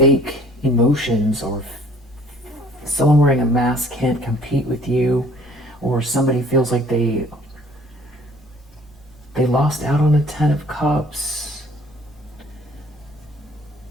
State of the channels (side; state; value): both; normal; correlation 0.55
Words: emotions, or someone wearing a mask can't compete with you, or somebody feels like they lost out on a 10 of Cups.